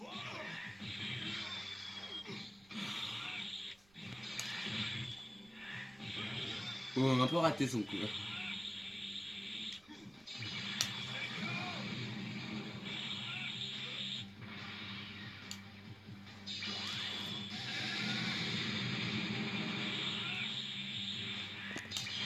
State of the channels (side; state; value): right; noise; rumble, 27 dB below the sound